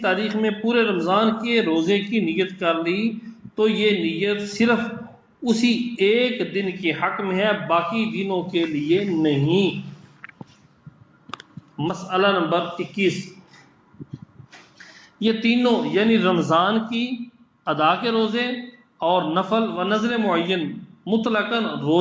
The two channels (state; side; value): identical; both; correlation 1.00